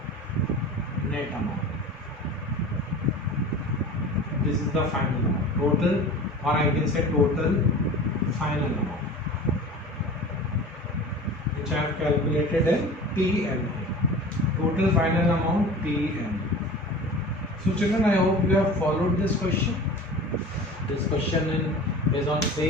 net amount. This is the final amount. Total, or I can say total final amount, which I have calculated in PNA. Total final amount PNA. So children, I hope you have followed this question. This question is on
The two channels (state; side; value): normal; both; correlation 0.37